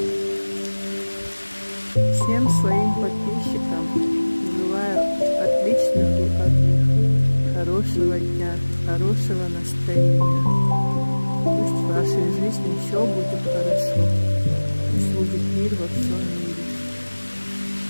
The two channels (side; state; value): both; inverted; correlation -1.00